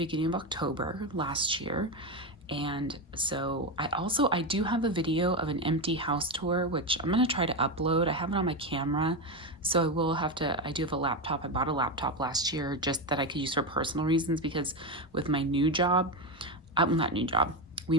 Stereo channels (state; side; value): normal; both; correlation 0.13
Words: of October last year. And so I do have a video of an empty house tour, which I'm going to try to upload. I have it on my camera. So I do have a laptop. I bought a laptop last year just that I could use for personal reasons, because with my new job, not new job, we